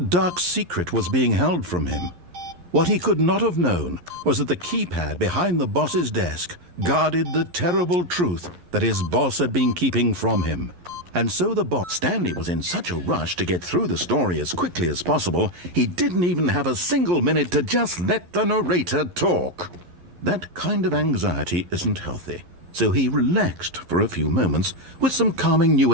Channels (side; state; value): left; late; 11 ms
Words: dark secret was being held from him. What he could not have known was that the keypad behind the boss's desk guarded the terrible truth that his boss had been keeping from him. And so the boss, Stanley, was in such a rush to get through the story as quickly as possible, he didn't even have a single minute to just let the narrator talk. That kind of anxiety isn't healthy, so he relaxed for a few moments with some calming New